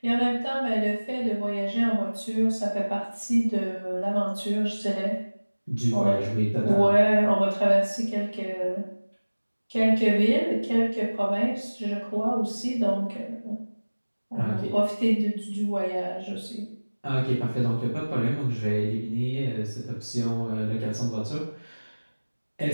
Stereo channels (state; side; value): inverted; both; correlation -1.00